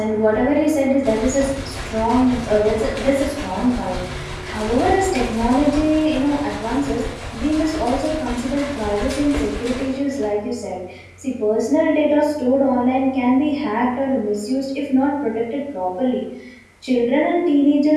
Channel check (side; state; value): both; identical; correlation 1.00